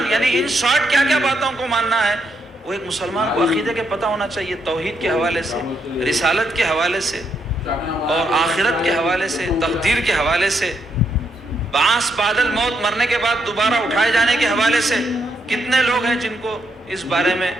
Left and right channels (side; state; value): both; normal; correlation 0.78